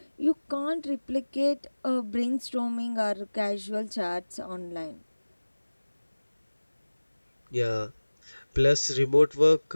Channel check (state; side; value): inverted; both; correlation -1.00